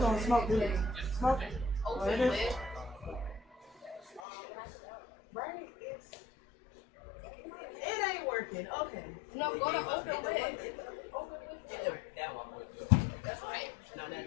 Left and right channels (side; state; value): right; drops out; at 4.2 s